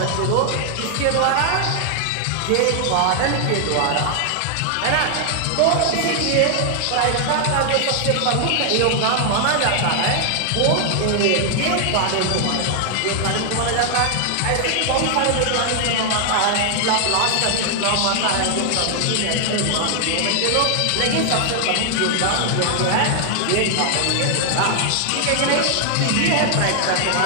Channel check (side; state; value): both; different; correlation 0.00